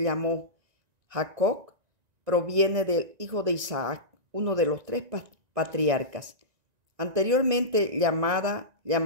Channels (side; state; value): left; late; 1.9 ms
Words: llamó Jacob, proviene del hijo de Isaac, uno de los tres patriarcas, anteriormente